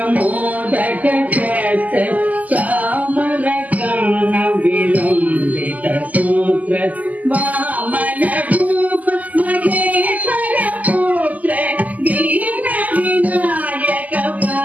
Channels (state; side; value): late; left; 0.078 ms